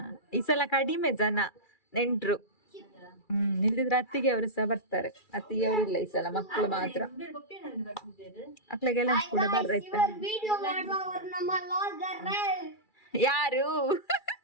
ಈ ಸಲ ಕಡಿಮೆ ಜನ ನೆಂಟ್ರು. ಇಲ್ದಿದ್ರೆ ಅತ್ತಿಗೆ ಅವರು ಸಹ ಬರ್ತಾರೆ. ಅತ್ತಿಗೆ ಅವರು ಇಲ್ಲ ಈ ಸಲ, ಮಕ್ಕಳು ಮಾತ್ರ. ಮಕ್ಳಿಗೆಲ್ಲ ಕೂಡ ಬರ್ರೈತೆ. ಯಾರು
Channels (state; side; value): late; right; 2.3 ms